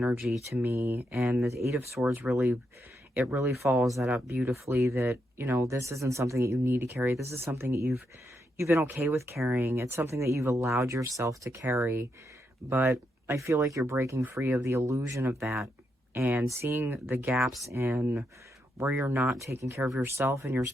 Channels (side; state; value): both; normal; correlation 0.82